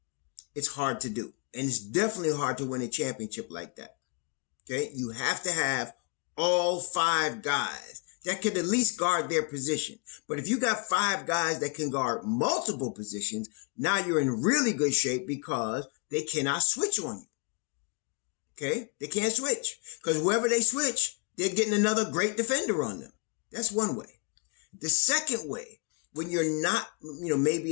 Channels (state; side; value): quieter; right; 33.3 dB